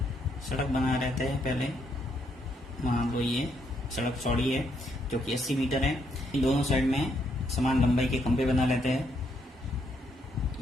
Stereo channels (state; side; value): normal; both; correlation 0.74